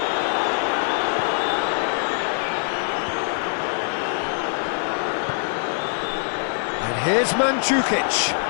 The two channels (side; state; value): right; silent; digital silence